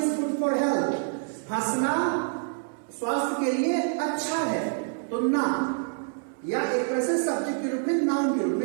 good for health, हंसना स्वास्थ्य के लिए अच्छा है, तो ना या एक तरह से सब्जेक्ट के रूप में नाउन के रूप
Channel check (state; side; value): silent; left; 60 dB below the other